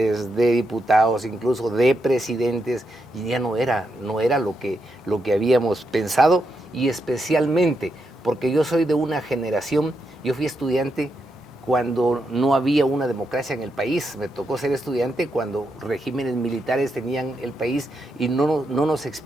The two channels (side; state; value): both; normal; correlation 0.83